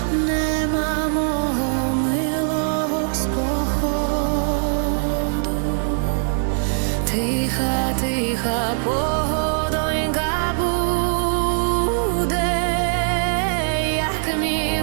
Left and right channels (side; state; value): left; silent; digital silence